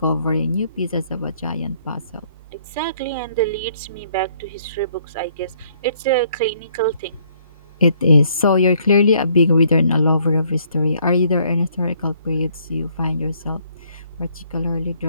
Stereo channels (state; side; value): inverted; both; correlation -0.65